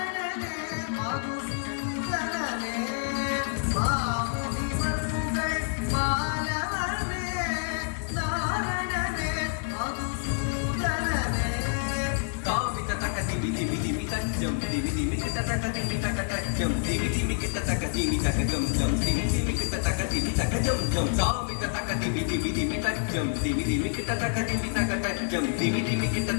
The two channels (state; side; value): silent; right; digital silence